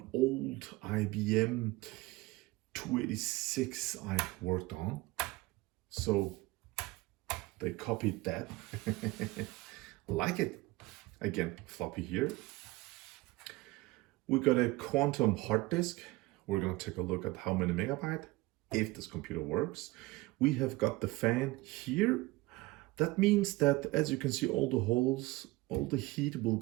old IBM 286 I worked on. So they copied that. Like it. Again, floppy here. We got a quantum hard disk. We're going to take a look at how many megabyte, if this computer works. We have got the fan here. That means that, as you can see, all the holes, all the heat will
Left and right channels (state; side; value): quieter; left; 20.8 dB